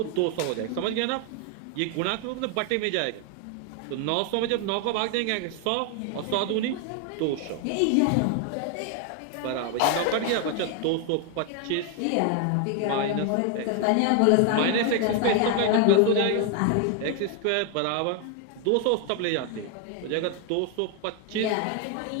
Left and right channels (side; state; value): both; different; correlation 0.01